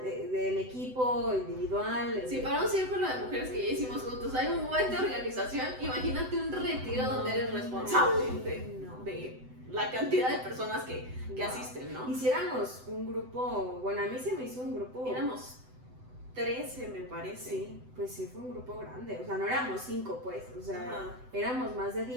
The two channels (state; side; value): late; left; 7.9 ms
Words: del equipo individual. Sí, para un círculo de mujeres que ya hicimos juntos hay un buen de organización, imagínate un retiro donde eres responsable de la cantidad de personas que asisten, ¿no? Hiciéramos un grupo, bueno, a mí se me hizo un grupo. Éramos 13, me parece. Sí, pues sí, fue un grupo grande, o sea, no éramos 5, pues, o sea, éramos más de